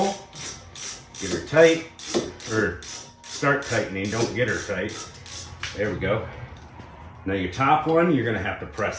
Get her tight, or start tightening, don't get her tight. There we go. Now your top one, you're gonna have to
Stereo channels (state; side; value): identical; both; correlation 1.00